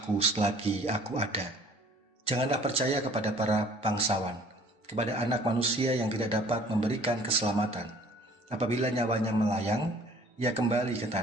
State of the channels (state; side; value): normal; both; correlation 0.53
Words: selagi aku ada. Janganlah percaya kepada para bangsawan, kepada anak manusia yang tidak dapat memberikan keselamatan. Apabila nyawanya melayang, ia kembali ke